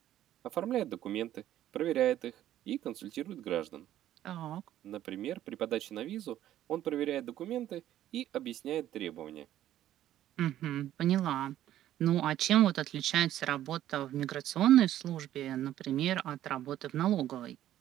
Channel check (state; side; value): quieter; left; 12.6 dB